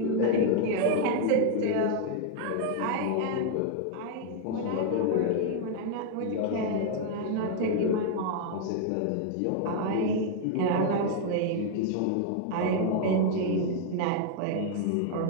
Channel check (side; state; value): both; different; correlation 0.00